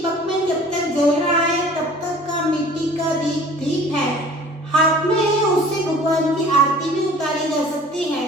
में, जब तक जल रहा है तब तक का मिट्टी का दीप है, हाथ में है, उससे भगवान की आरती भी उतारी जा सकती है,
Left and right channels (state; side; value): normal; both; correlation 0.48